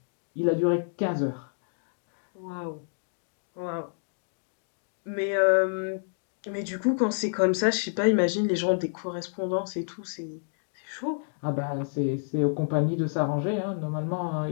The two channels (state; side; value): silent; right; digital silence